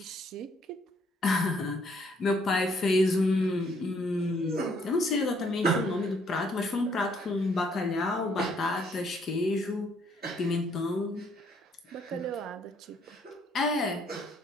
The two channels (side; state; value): both; normal; correlation 0.67